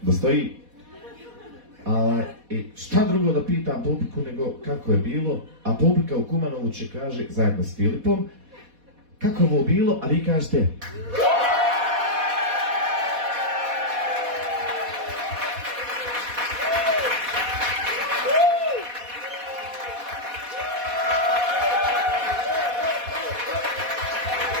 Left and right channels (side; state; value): left; late; 4.1 ms